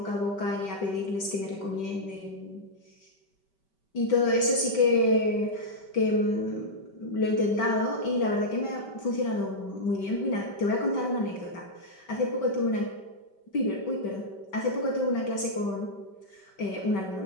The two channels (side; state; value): right; late; 5.2 ms